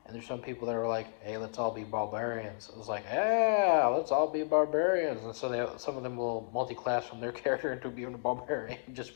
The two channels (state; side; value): silent; right; digital silence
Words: and there's some people that are like, hey, let's all be barbarians. It was like, yeah, let's all be barbarians, and so some of them will multi-class from their character into being a barbarian just